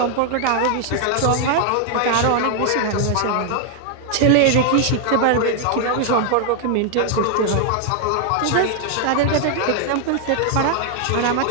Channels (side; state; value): both; different; correlation 0.00